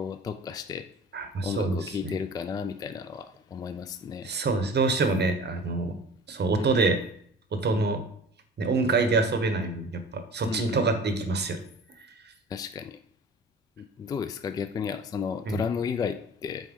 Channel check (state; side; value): normal; both; correlation 0.42